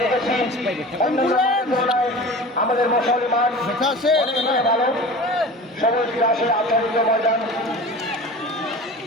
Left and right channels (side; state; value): both; normal; correlation 0.36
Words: দেখেছি আমাদের মশালি মাঠ দেখা আছে ভালো সবুজ ঘাসে আচ্ছাদিত ময়দান